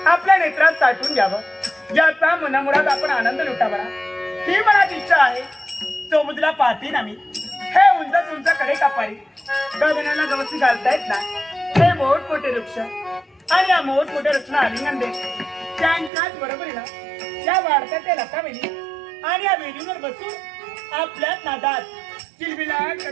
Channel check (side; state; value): left; drops out; at 16.1 s